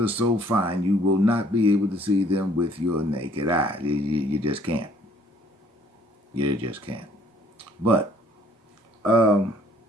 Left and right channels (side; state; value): both; normal; correlation 0.60